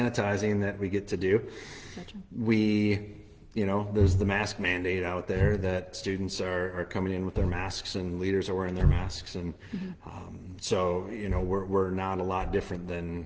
that we get to do. Gotcha. There's the mask mandate out there that students are coming in with their masks, and leaders are wearing their masks, and so we're not a lot different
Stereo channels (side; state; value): both; identical; correlation 1.00